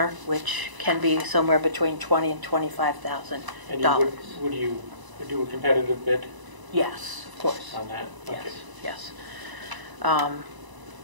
which can be somewhere between $20,000 and $25,000. And would you do a competitive bid Yes, of course. on that? Okay. Yes. John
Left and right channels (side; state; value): left; late; 1.0 ms